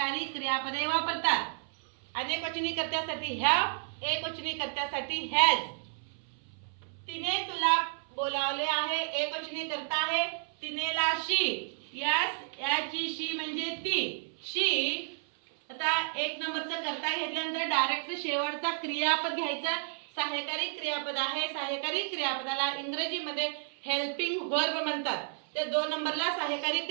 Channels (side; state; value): left; silent; 57 dB below the other